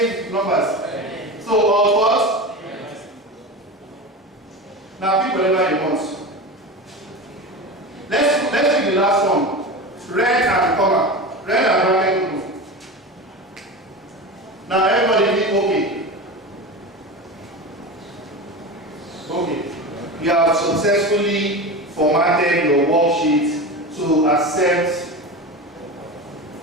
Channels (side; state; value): both; normal; correlation 0.27